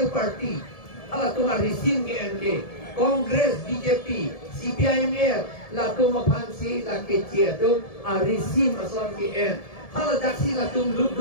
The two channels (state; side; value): late; right; 1.7 ms